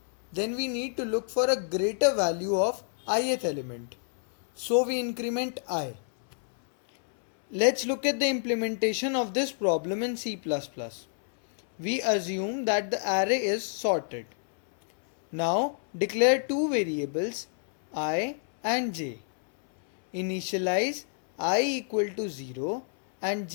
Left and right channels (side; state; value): right; silent; 59 dB below the other